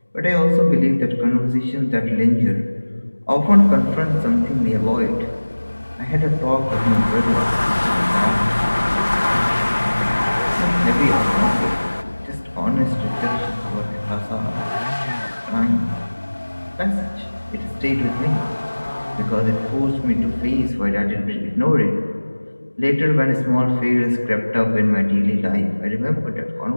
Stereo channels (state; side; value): inverted; both; correlation -1.00